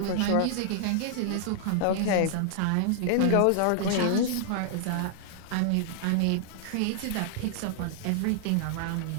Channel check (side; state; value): both; different; correlation -0.01